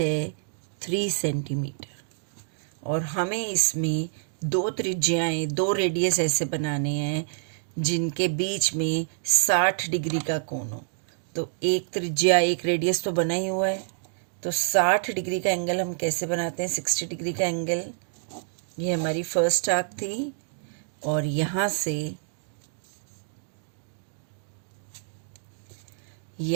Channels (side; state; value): left; silent; digital silence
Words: 3 सेंटीमीटर और हमें इसमें दो त्रिज्याएं, दो रेडियस ऐसे बनाने हैं जिनके बीच में 60 डिग्री का कोण हो। तो एक त्रिज्या, एक रेडियस तो बना ही हुआ है। तो 60 डिग्री का एंगल हम कैसे बनाते हैं? 60 डिग्री का एंगल, ये हमारी फर्स्ट आर्क थी और यहाँ